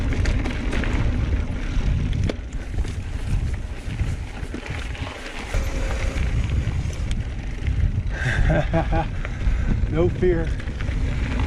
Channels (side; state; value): both; identical; correlation 1.00